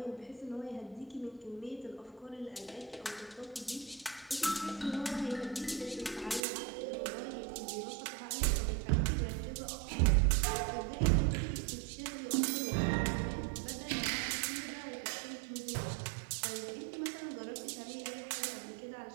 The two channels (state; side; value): drops out; left; at 6.4 s